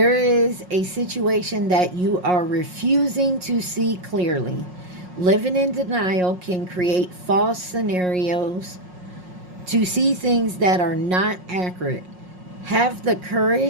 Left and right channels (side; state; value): left; late; 5.5 ms